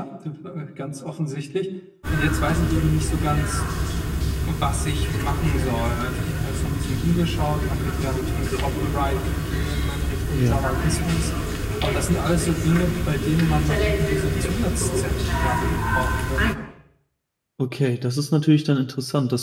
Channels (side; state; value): both; identical; correlation 1.00